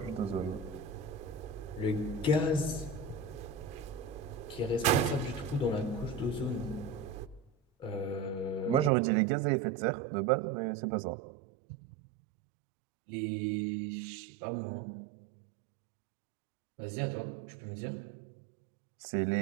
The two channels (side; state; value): left; drops out; at 8.9 s